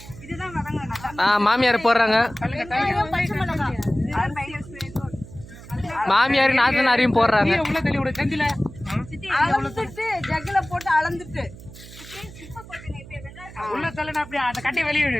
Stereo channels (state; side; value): noise; right; hum, 17 dB below the sound